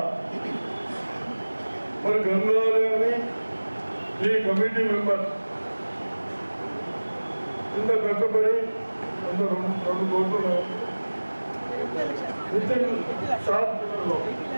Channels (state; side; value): inverted; both; correlation -1.00